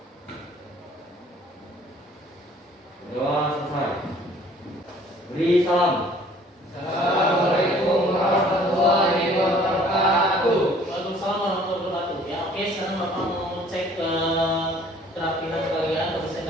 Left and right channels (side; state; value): both; normal; correlation 0.55